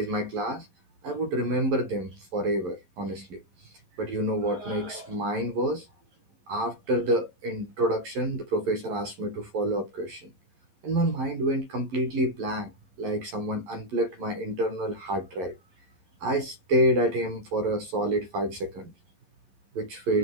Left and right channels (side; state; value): left; late; 11 ms